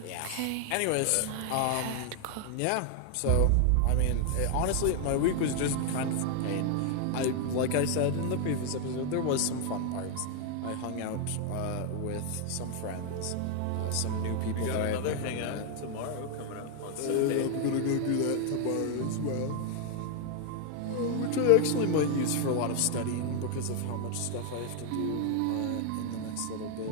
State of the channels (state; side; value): different; both; correlation 0.00